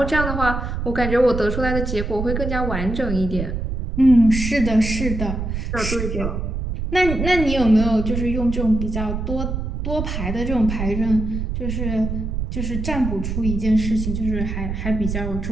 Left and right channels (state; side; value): noise; right; rumble, 3 dB below the sound